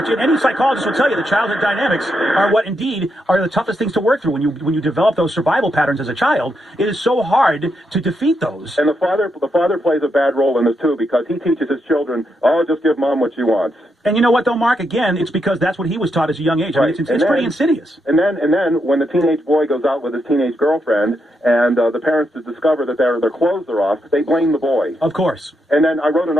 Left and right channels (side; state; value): both; normal; correlation 0.81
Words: Any psychologist will tell you the childhood dynamics are what indeed are the toughest things to work through. When you develop those survival patterns as a child, it is so hard to defeat those. And the father plays a bad role in this too, because he teaches his children, oh, just give mom what she wants. And you know what, though, Mark? Again, it's because that's what he was taught as a young age. Right. I mean, it's pretty insidious. And then when the teenage boy goes out with his teenage girlfriend and the parents discover that their clothes are off, they blame the boy. Of course. And then I wrote an